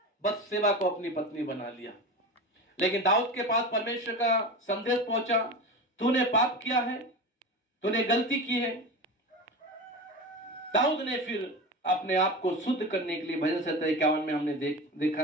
बत्सेबा को अपनी पत्नी बना लिया। लेकिन दाऊद के पास परमेश्वर का संदेश पहुंचा, तूने पाप किया है, तूने गलती की है। दाऊद ने फिर अपने आप को शुद्ध करने के लिए, भजन 51 में हमने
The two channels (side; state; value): both; normal; correlation 0.27